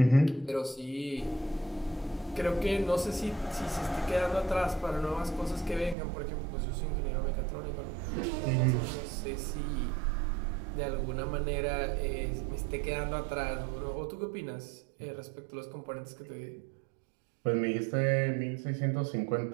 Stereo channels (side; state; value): left; drops out; at 6.0 s